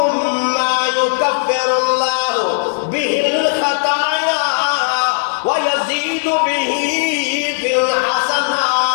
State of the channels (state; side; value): silent; right; 61 dB below the other